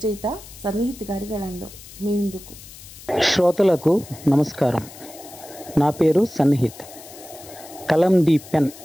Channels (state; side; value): noise; left; hiss, 18 dB below the sound